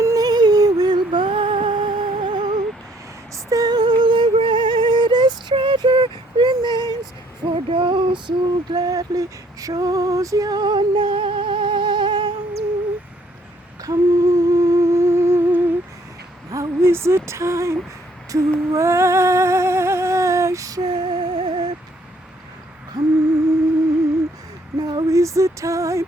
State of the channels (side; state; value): both; normal; correlation 0.64